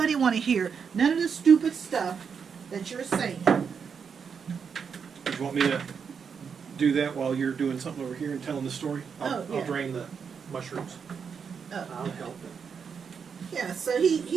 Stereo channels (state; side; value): quieter; left; 6.4 dB